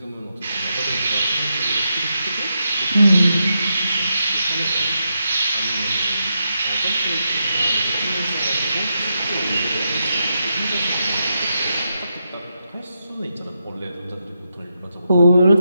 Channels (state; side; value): inverted; both; correlation -0.85